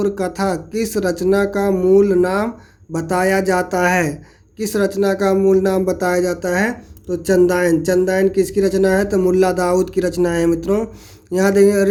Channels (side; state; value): both; identical; correlation 1.00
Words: कथा किस रचना का मूल नाम बताया जाता है? किस रचना का मूल नाम बताया जाता है? तो चंदायन किसकी रचना है? तो मुल्ला दाऊद की रचना है मित्रों। यहाँ देखेंगे